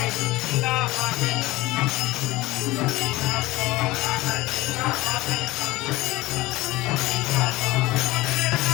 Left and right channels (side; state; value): right; quieter; 19.4 dB